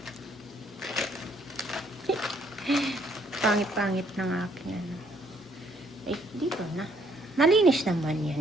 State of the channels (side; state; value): both; normal; correlation 0.67